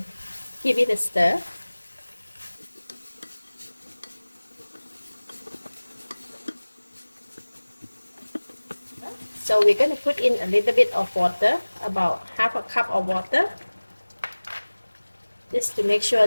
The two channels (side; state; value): both; inverted; correlation -1.00